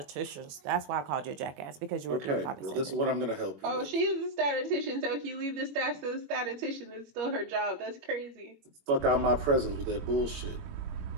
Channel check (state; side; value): late; left; 21 ms